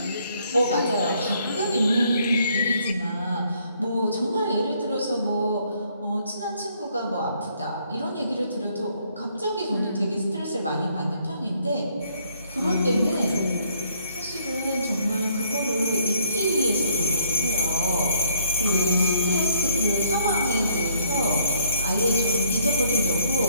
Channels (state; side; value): inverted; both; correlation -0.67